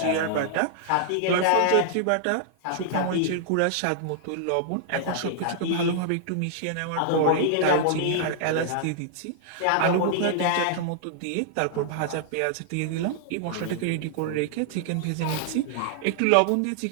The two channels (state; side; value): different; both; correlation -0.01